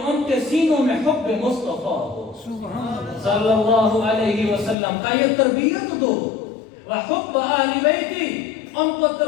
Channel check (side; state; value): right; drops out; at 4.8 s